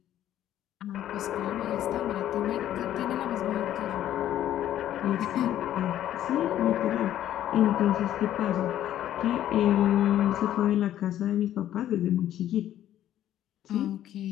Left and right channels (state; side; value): quieter; right; 12.0 dB